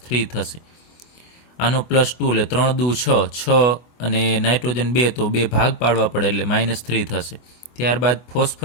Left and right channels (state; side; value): late; right; 24 ms